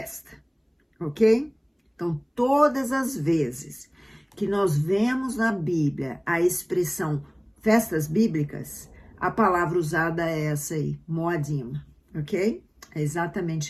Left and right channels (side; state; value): both; identical; correlation 1.00